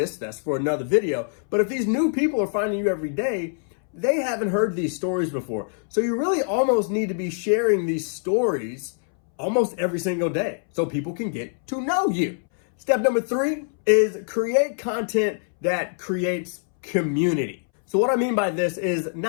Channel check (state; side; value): silent; right; 63 dB below the other